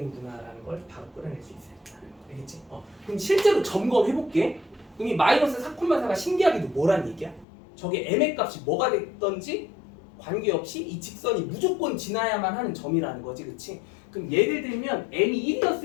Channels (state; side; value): drops out; right; at 7.5 s